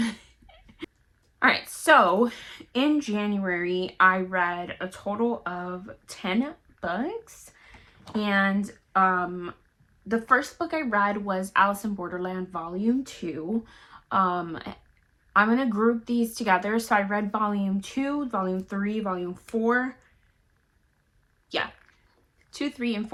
All right, so in January I read a total of 10 books, and the first book I read was Alice in Borderland Volume 2. I'm gonna group these together. So I read Volume 2, Volume 3, Volume 4. Yeah, 2, 3, and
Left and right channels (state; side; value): identical; both; correlation 1.00